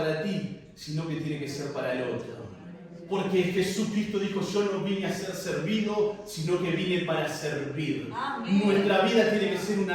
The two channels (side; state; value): both; identical; correlation 1.00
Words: ti, sino que tiene que ser para el otro. Porque Jesucristo dijo, yo no vine a ser servido, sino que vine para servir. Amén. Nuestra vida tiene que ser